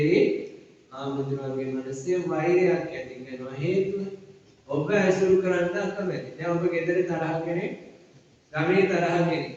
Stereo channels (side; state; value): both; identical; correlation 1.00